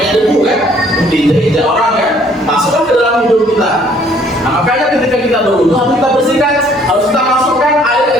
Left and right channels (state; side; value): normal; both; correlation 0.61